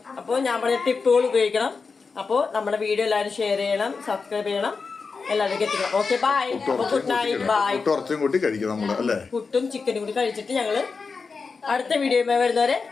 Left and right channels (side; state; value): right; quieter; 4.8 dB